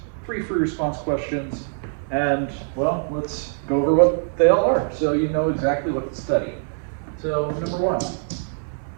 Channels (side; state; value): left; silent; 63 dB below the other